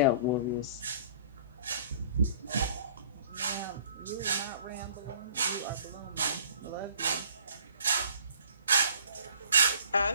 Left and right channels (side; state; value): both; inverted; correlation -0.52